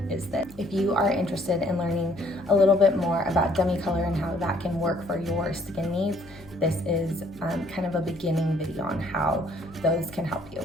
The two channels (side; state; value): left; noise; hum, 22 dB below the sound